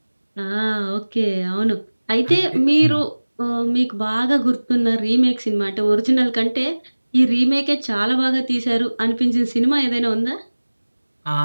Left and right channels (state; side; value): inverted; both; correlation -1.00